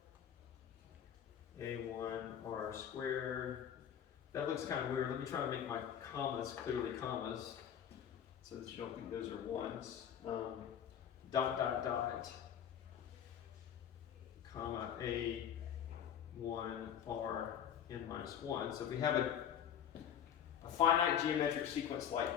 A1R squared. That looks kind of weird. Let me try to make my commas clearly commas so that you don't think those are ones. Dot, dot, dot, comma, A1R n minus 1. So if we have a finite geometric sequence like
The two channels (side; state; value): right; quieter; 9.1 dB